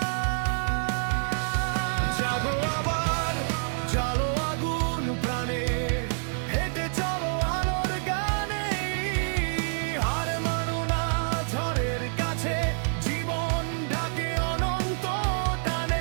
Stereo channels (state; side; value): silent; left; digital silence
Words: জাগো আবার, জালো আগুন প্রাণে, হেঁটে চলো আলোর গানে, হার মানো না ঝড়ের কাছে, জীবন ডাকে অনন্ত টানে।